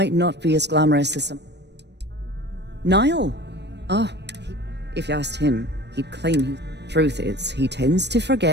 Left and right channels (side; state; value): left; late; 0.50 ms